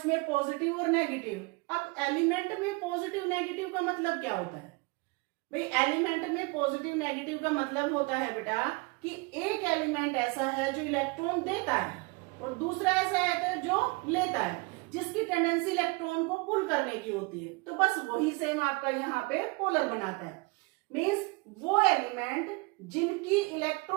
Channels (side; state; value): left; quieter; 27.9 dB